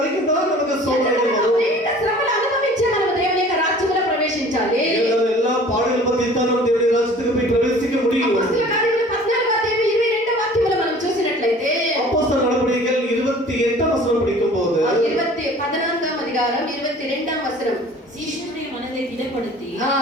தான் நமக்கு சோதனைகள் வரும். అనేక శ్రమలు అనుభవించే మనం దేవుని యొక్క రాజ్యంలో ప్రవేశించాలి. எல்லா பாடுகள் பத்தி தான் நம்ம தேவனுடைய ராஜ்யத்துக்கு போய் பிரவேசிக்க முடியும். అపొస్తలుల కార్యములు 14:22 వాక్యములో మనం చూసినట్లయితే, அப்போஸ்தலர் நடபடிகள் 28ஆம் வசனம் படிக்கும்போது 14వ అధికారం 22వ వచనం. சீஷனுடைய மனதை திடப்படுத்தி ఆ,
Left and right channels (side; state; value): both; normal; correlation 0.47